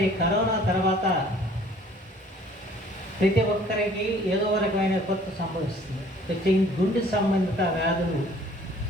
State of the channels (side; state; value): both; normal; correlation 0.55